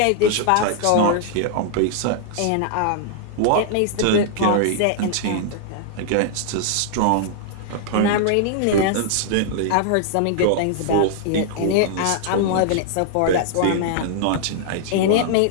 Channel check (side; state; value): both; different; correlation -0.01